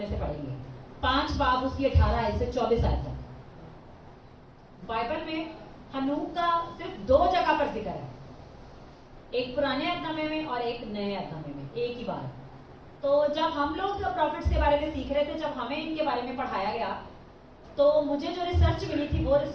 سے پڑھیں گے. 5 باب اس کی 18 آیت سے 24 آیت تک. بائبل میں ہنوک کا صرف 2 جگہ پر ذکر ہے، ایک پرانے عہد نامے میں اور ایک نئے عہد نامے میں، ایک ہی بار. تو جب ہم لوگ پروفٹس کے بارے میں سیکھ رہے تھے، جب ہمیں ان کے بارے میں پڑھایا گیا، تو مجھے جو ریسرچ ملی تھی وہ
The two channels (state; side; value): identical; both; correlation 1.00